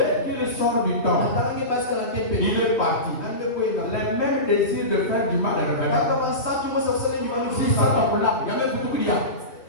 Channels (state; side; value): late; right; 2.6 ms